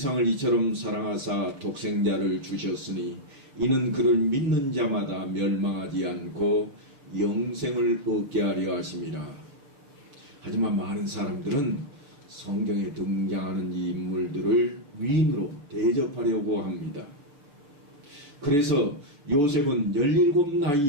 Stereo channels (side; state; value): left; late; 6.9 ms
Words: 이처럼 사랑하사 독생자를 주셨으니 이는 그를 믿는 자마다 멸망하지 않고 영생을 얻게 하려 하심이라. 하지만 많은 사람들은 성경에 등장하는 이 인물들을 위인으로 대접하려고 합니다. 그래서 요셉은 17